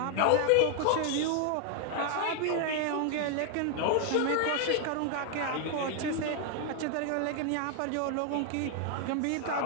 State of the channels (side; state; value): both; different; correlation 0.00